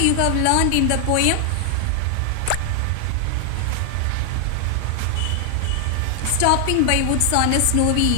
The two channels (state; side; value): different; both; correlation 0.00